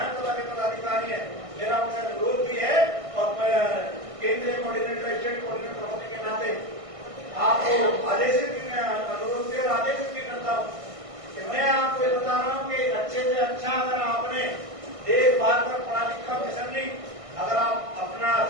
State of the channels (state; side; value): late; left; 1.6 ms